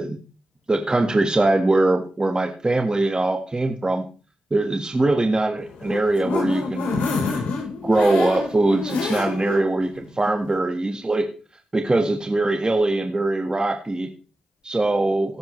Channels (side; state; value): both; normal; correlation 0.93